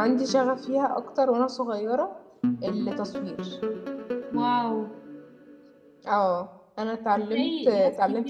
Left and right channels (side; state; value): both; identical; correlation 1.00